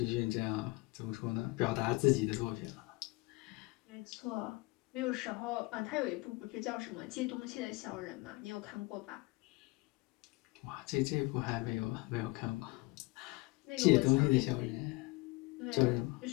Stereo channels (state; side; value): quieter; right; 23.5 dB